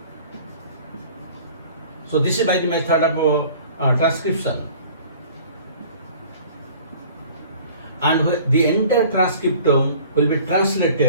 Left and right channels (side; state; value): both; inverted; correlation -0.48